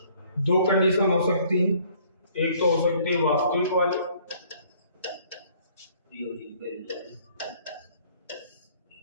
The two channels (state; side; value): inverted; both; correlation -0.59